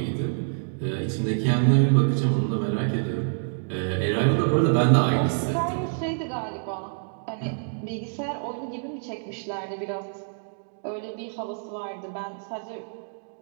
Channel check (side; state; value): left; silent; digital silence